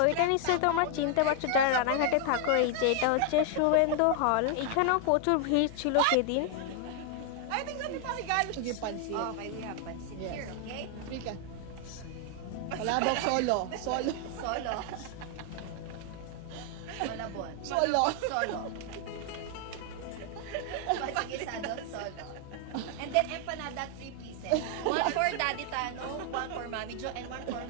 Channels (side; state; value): both; different; correlation 0.00